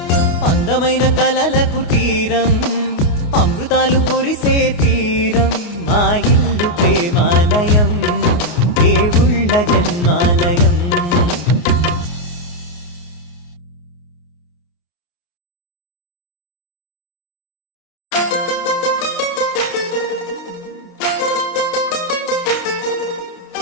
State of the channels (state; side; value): late; right; 29 ms